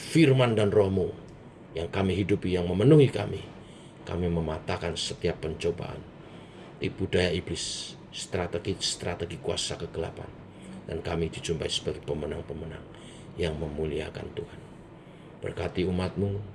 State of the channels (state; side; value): identical; both; correlation 1.00